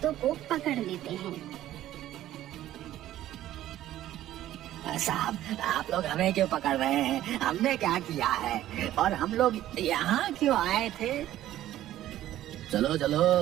को पकड़ लेते हैं। साहब, आप लोग हमें क्यों पकड़ रहे हैं? हमने क्या किया है और हम लोग यहाँ क्यों आए थे? चलो चलो,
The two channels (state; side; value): quieter; left; 13.4 dB